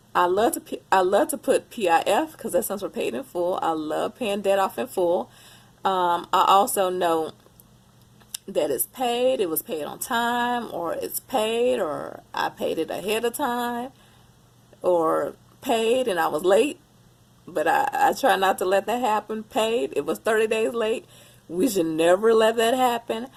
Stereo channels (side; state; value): both; identical; correlation 1.00